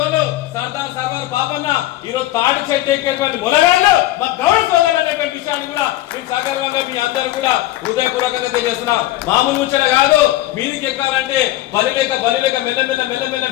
సర్దార్ సర్వార్ బాబన్న ఈరోజు తాడి చెట్టు ఎక్కేటువంటి మునగాళ్ళు మా గౌరవ సోదరులు అనేటువంటి విషయాన్ని కూడా మేము సగర్వంగా మీ అందరూ కూడా హృదయపూర్వకంగా తెలియజేస్తున్నాం. మామూలు ముచ్చట కాదు, మీదికి ఎక్కాలంటే బలిలేక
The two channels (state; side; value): quieter; right; 15.5 dB